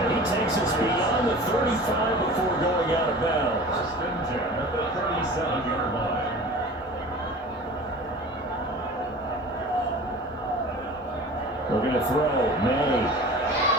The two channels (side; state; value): both; normal; correlation 0.39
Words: he takes us beyond the 35 before going out of bounds. First and 10 at the 37-yard line. We're going to throw. May.